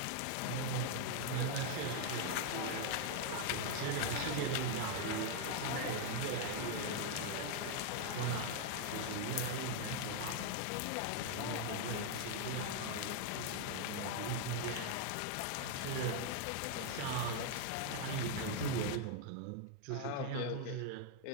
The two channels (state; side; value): different; both; correlation 0.00